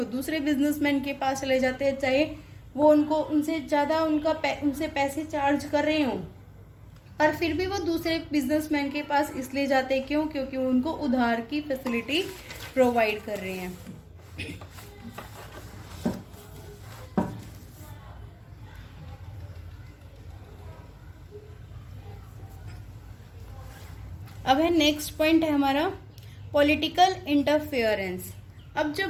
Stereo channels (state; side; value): identical; both; correlation 1.00